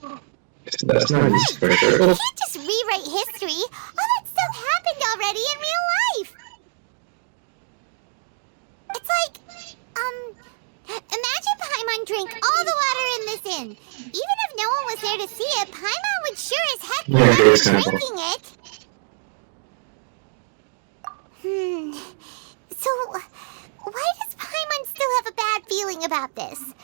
That's not easy for sure. You can't just rewrite history. All that stuff happened already in real life. It's like, imagine Paimon drank all the water in this inn. Even if no one was there to see it, Paimon would sure as heck be drinking it. So, why does Paimon still have a bad feeling about this?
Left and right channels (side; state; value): left; silent; digital silence